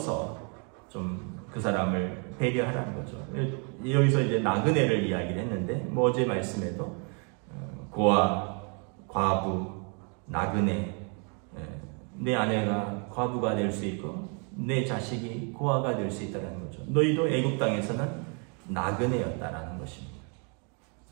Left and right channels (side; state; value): left; quieter; 36.9 dB